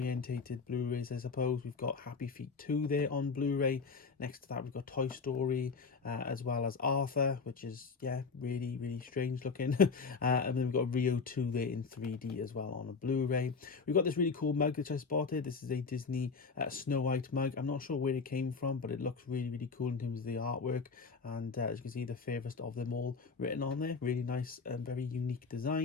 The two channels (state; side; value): quieter; right; 4.9 dB